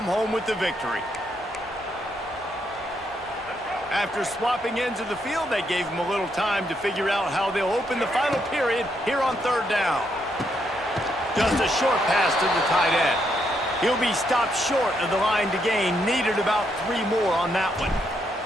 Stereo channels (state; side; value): normal; both; correlation 0.77